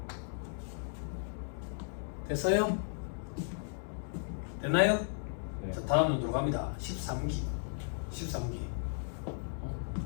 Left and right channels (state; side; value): silent; right; digital silence